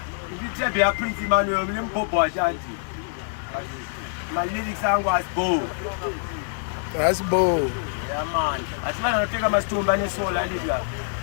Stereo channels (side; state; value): right; silent; 62 dB below the other